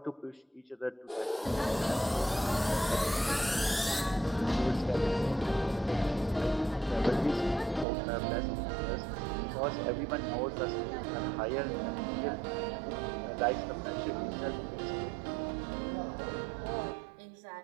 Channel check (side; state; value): left; drops out; at 7.9 s